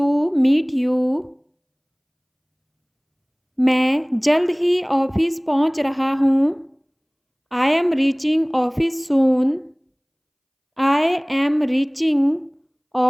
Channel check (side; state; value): both; identical; correlation 1.00